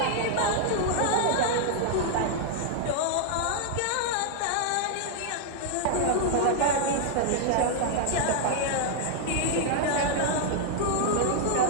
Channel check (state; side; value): different; both; correlation -0.01